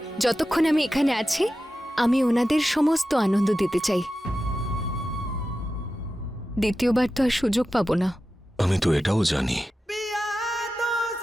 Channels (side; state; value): both; normal; correlation 0.93